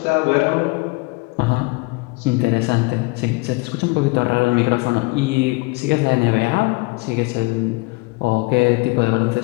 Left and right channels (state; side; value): quieter; right; 25.6 dB